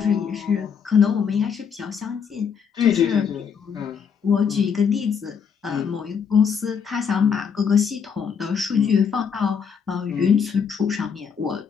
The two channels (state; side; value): quieter; right; 6.8 dB